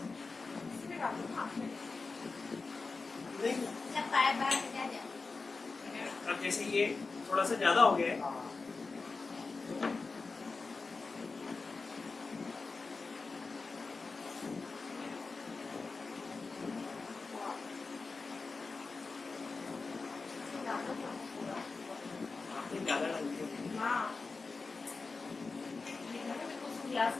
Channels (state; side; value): quieter; right; 4.1 dB